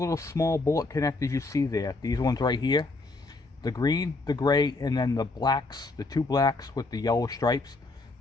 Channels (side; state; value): right; quieter; 3.3 dB